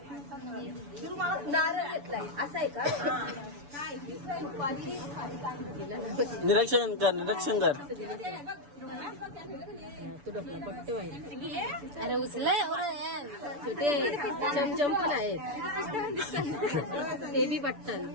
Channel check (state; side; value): late; left; 6.9 ms